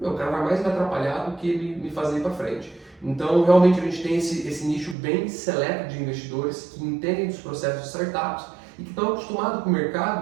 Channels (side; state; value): left; drops out; at 5.0 s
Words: o cara vai mais me atrapalhar do que me fazer ir para frente. Então, realmente, a gente tem esse nicho bem seleto de investidores que entendem dos processos de startups e que estão acostumados com o